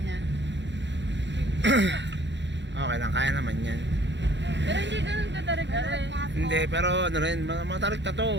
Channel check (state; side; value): late; left; 0.52 ms